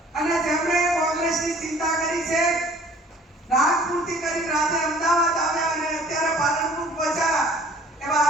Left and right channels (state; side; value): normal; both; correlation 0.52